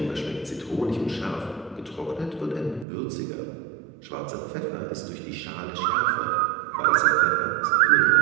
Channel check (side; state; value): left; drops out; at 2.9 s